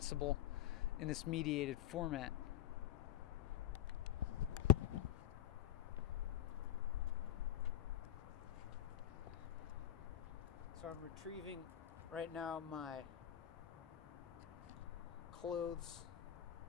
in this mediated format. So I'm retrieving right now my clothes,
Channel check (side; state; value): right; quieter; 11.5 dB